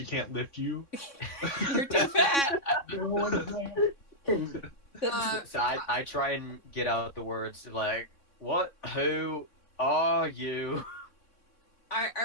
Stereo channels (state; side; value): late; right; 3.6 ms